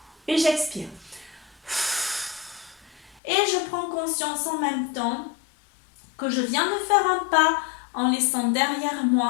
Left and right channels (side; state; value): right; drops out; at 3.2 s